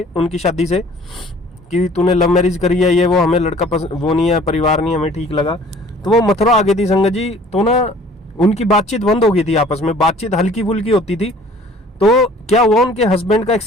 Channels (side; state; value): both; normal; correlation 0.52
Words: उनकी शादी से कि तूने लव मैरिज करी है, ये वो, हमें लड़का वो नहीं है, परिवार नहीं हमें ठीक लगा, तो वो मथुरा आ गई थी संगत जी। तो ना उनकी बातचीत बंद हो गई थी, आपस में बातचीत हल्की फुल्की होती थी। तो क्या हुआ, उनके हस्बैंड का